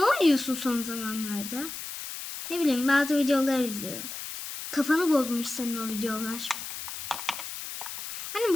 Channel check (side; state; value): left; noise; hiss, 8 dB below the sound